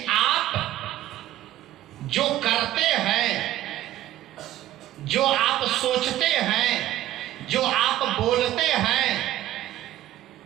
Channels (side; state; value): left; quieter; 13.8 dB